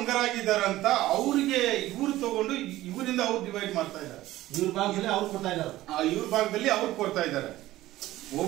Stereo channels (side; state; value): left; quieter; 15.9 dB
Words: ಅವ್ರಿಗೆ ಇವ್ರು ತಗೊಂಡು ಇವರಿಂದ ಅವ್ರು ಡಿವೈಡ್ ಮಾಡ್ತಾ ಇದ್ದಾರೆ. ಇವ್ರ ಭಾಗದಲ್ಲಿ ಅವ್ರು ಕೊಡ್ತಾ ಇದ್ದಾರೆ, ಇವ್ರ ಭಾಗದಲ್ಲಿ ಅವ್ರು ಕೊಡ್ತಾ ಇದ್ದಾರೆ.